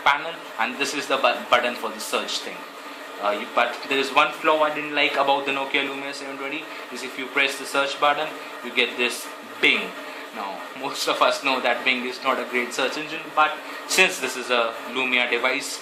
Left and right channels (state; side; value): identical; both; correlation 1.00